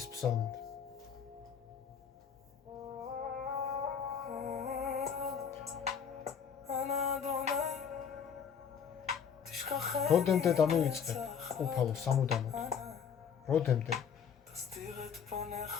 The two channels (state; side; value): quieter; right; 7.2 dB